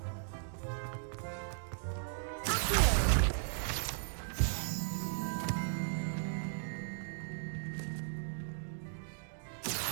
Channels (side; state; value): left; silent; digital silence